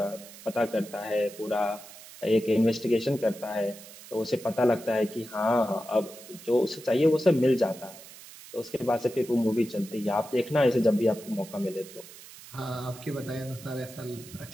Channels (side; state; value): right; noise; hiss, 17 dB below the sound